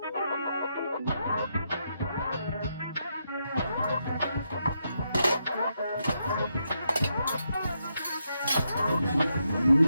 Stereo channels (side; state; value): both; inverted; correlation -0.81